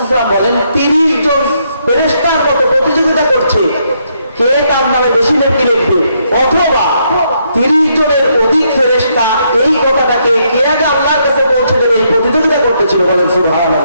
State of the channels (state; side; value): inverted; both; correlation -0.75